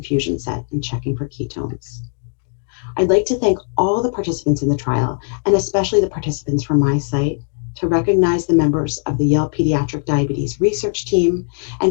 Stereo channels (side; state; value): right; silent; 58 dB below the other